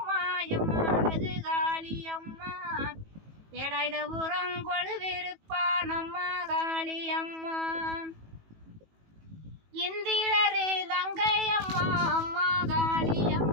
எம்மா அழகு காளி அம்மா வேலாயுத உரங்கொழு விருப்பா நம்ம காளி அம்மா இந்திரரு தங்கையம்மா அம்மா காளி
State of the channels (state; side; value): late; left; 18 ms